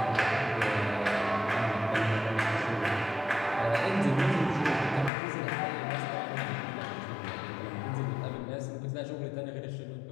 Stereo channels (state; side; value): drops out; right; at 5.1 s